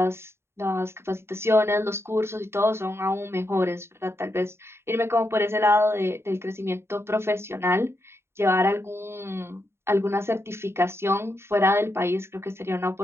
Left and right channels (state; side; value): late; left; 0.12 ms